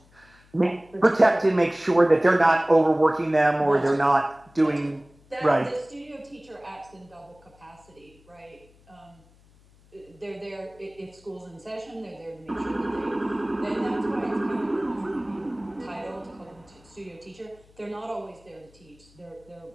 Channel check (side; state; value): left; noise; hum, 28 dB below the sound